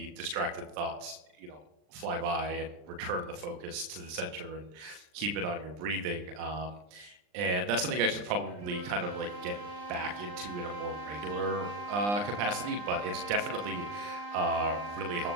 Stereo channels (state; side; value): late; left; 39 ms